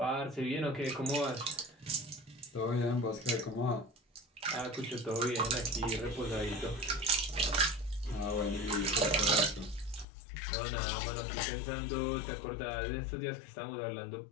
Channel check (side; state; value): right; drops out; at 10.1 s